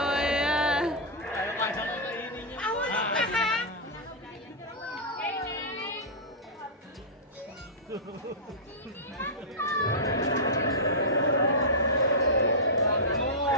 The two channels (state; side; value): normal; both; correlation -0.12